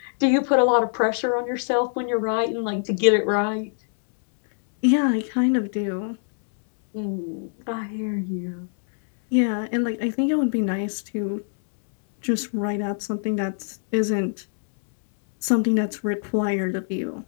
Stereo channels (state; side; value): silent; right; digital silence